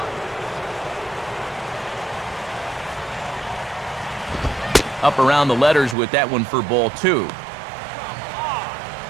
Up around the letters with that one for ball 2.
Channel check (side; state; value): left; drops out; at 6.0 s